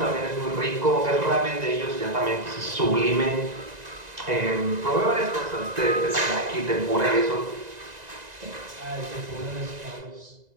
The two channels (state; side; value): late; left; 2.0 ms